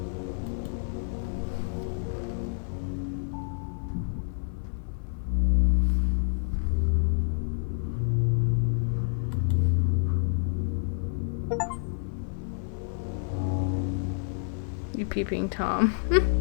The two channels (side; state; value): right; silent; digital silence